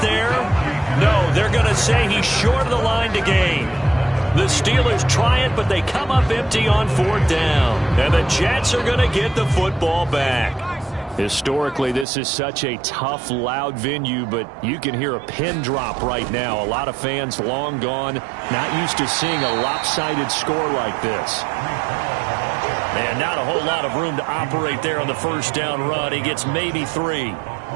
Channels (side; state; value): left; drops out; at 12.1 s